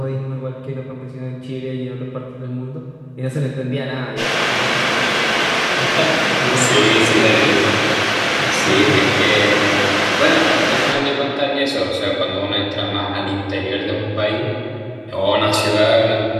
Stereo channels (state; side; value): identical; both; correlation 1.00